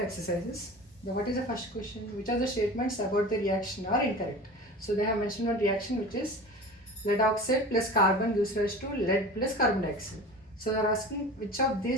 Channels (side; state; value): both; normal; correlation 0.36